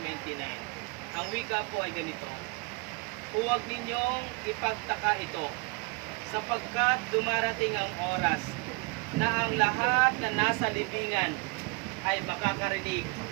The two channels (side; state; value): left; quieter; 28.5 dB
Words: 29. Ang wika po ay ganito: huwag ninyong ipagtaka ito, sapagkat dumarating ang oras na ang lahat na nasa libingan ay makakarinig